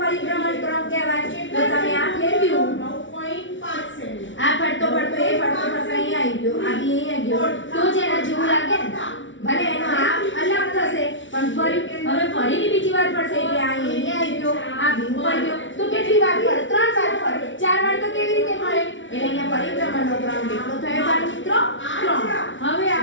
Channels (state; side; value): late; right; 0.56 ms